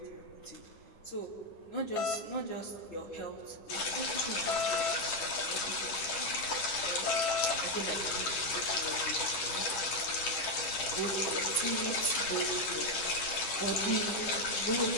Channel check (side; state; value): right; late; 10 ms